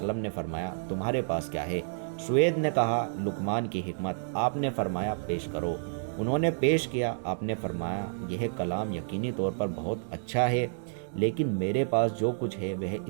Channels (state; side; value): silent; left; 58 dB below the other